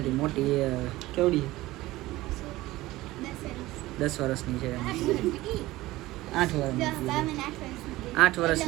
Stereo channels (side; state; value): left; quieter; 18.0 dB